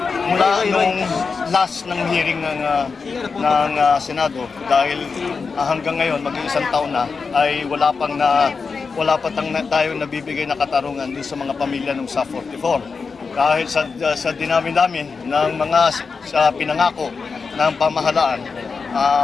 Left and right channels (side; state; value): right; quieter; 4.9 dB